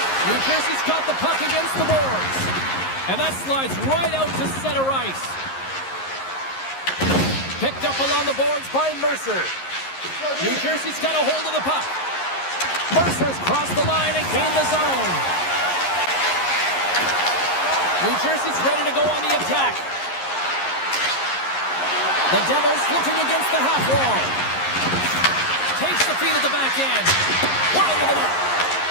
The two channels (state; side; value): late; right; 11 ms